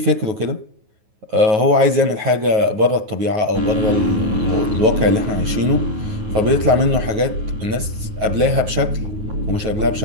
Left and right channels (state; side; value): late; left; 9.4 ms